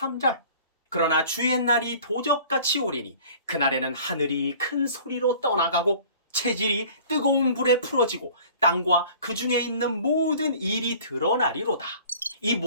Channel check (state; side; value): inverted; both; correlation -0.48